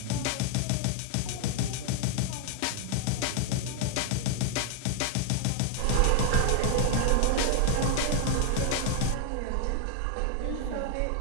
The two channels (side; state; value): both; different; correlation 0.00